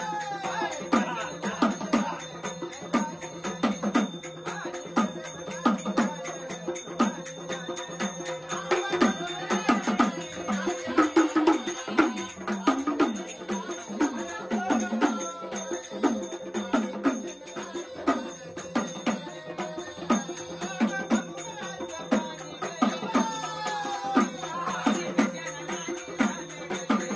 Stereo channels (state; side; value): identical; both; correlation 1.00